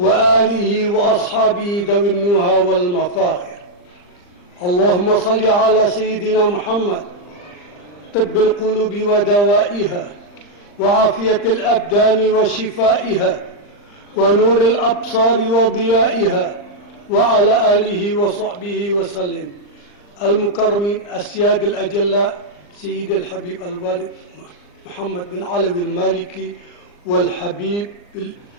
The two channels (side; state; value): right; late; 39 ms